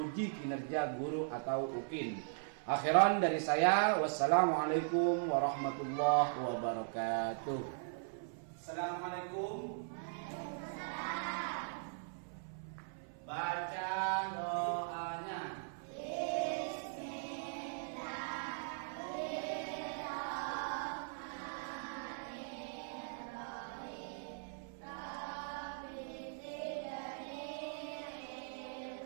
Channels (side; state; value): left; silent; 51 dB below the other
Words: kinerja guru atau UKIN. Akhiran dari saya, wassalamualaikum warahmatullahi wabarakatuh. Assalamualaikum. Baca doanya.